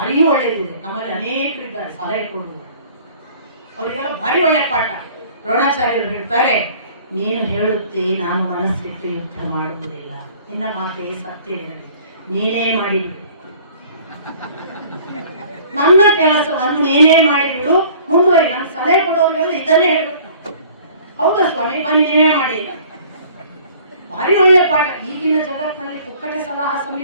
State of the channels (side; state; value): both; inverted; correlation -0.51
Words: ಒಳ್ಳೆಯದಿದೆ. ನಮ್ಮಲ್ಲಿ ಅನೇಕರಿದ್ದಾರೆ ಸಲಹೆ ಕೊಡುವರು, ಅವರಿಗೆಲ್ಲ ಭಾರಿ ಒಳ್ಳೆ ಪಾಠ. ದ್ರೋಣಾಚಾರ್ಯರು ಹೇಳ್ತಾರೆ, ನೀನು ಹೇಳುತ್ತೆ ನಾನು ಮನಸ್ಸಿಟ್ಟು ಯುದ್ಧ ಮಾಡುವುದಿಲ್ಲ, ನಿನ್ನ ಮಾತೆ ಸತ್ಯವಿರಲಿ, ನೀನೇ ಮಾಡಿಬಿಡು, ನನ್ನ ಕೆಲಸವನ್ನು ನೀನೇ ಮಾಡಿಬಿಡು, ಮುಂದುವರಿ. ನಮ್ಮ ಸಲಹೆ ಕೊಡೋರಿಗೆಲ್ಲ ಇದನ್ನೇ ಹೇಳ್ಬೇಕು. ಹೌದಾ ಸ್ವಾಮಿ, ಬನ್ನಿ ನೀವೇ ಮಾಡಿ. ಭಾರಿ ಒಳ್ಳೆಯ ಪಾಠ. ಈಗಿನ ಜಗತ್ತಿನಲ್ಲಿ ಪುಕ್ಕಟೆ ಸಲಹಾ